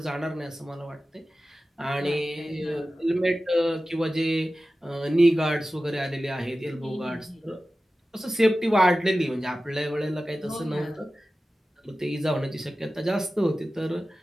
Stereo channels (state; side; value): normal; both; correlation 0.95